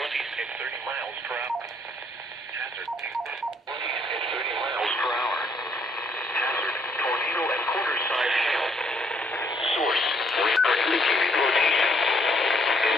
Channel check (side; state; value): both; normal; correlation 0.68